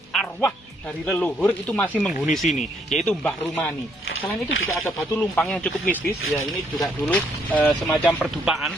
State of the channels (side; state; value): both; normal; correlation 0.70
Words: arwah dari leluhur itu masih menghuni sini, yaitu Mbah Rumani. Selain itu juga ada batu lumpang yang cukup mistis ya, ini juga dulu semacam